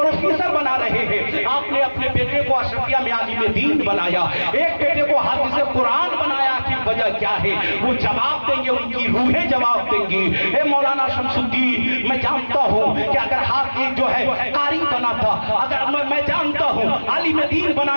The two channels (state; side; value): inverted; both; correlation -1.00